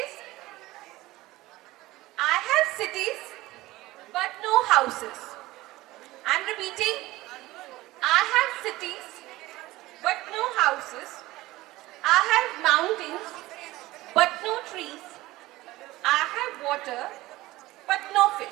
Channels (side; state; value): left; quieter; 18.3 dB